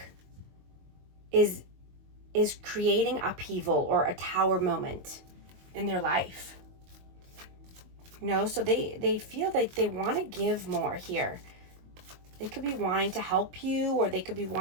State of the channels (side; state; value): left; late; 22 ms